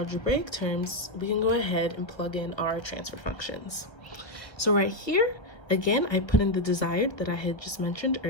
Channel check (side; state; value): right; late; 1.4 ms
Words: terms, we can go ahead and plug in our transfer functions. So right here, again, I put in the desired that I had just mentioned